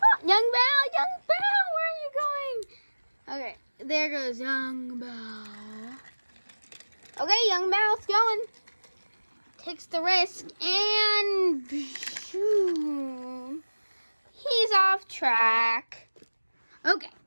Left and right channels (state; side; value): inverted; both; correlation -1.00